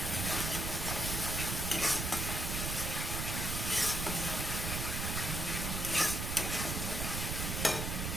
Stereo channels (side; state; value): right; noise; rumble, 2 dB below the sound